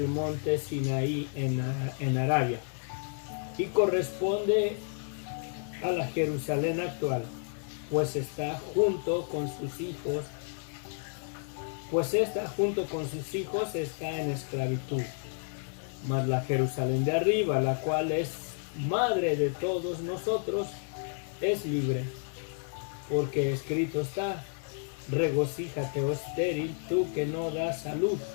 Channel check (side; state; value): right; silent; 57 dB below the other